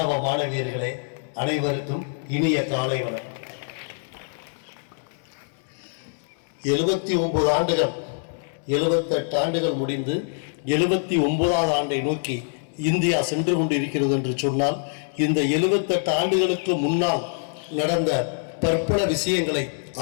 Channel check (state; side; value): silent; right; digital silence